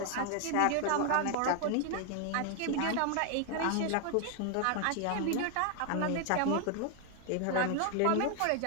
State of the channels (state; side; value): different; both; correlation 0.00